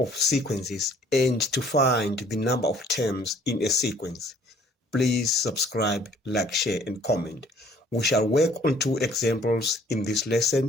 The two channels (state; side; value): normal; both; correlation 0.58